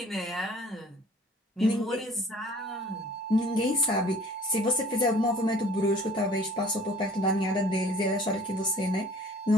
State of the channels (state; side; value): normal; both; correlation 0.51